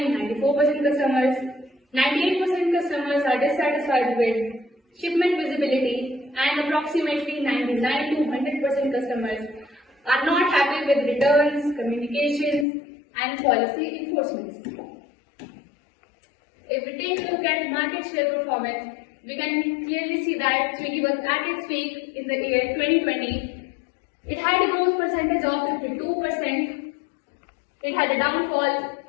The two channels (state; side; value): drops out; right; at 12.7 s